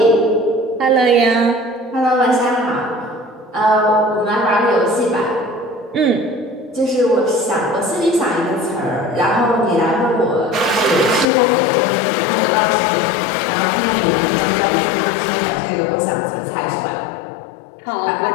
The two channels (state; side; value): drops out; right; at 11.2 s